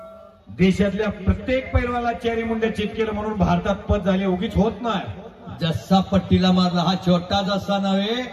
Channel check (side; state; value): both; identical; correlation 1.00